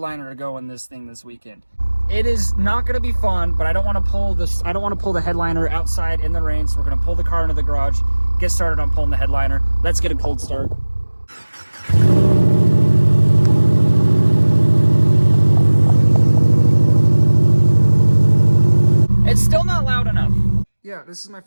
to go in this thing this weekend. It is not going to be fun, but I don't want to pull this. I don't want to pull the headliner outside in the rain, so we're going to pull the car into the garage, get started on pulling the headliner. Let's get a cold start. It's still not loud enough. Yeah, this is my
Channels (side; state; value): both; inverted; correlation -1.00